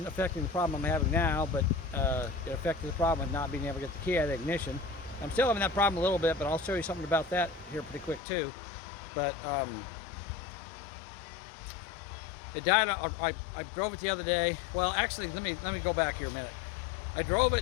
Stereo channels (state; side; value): drops out; right; at 8.2 s